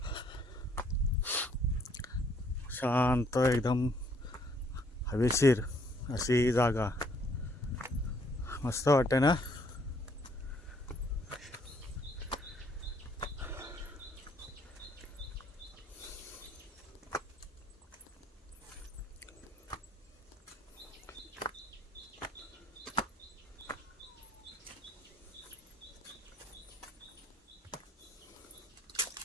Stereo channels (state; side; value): normal; both; correlation 0.66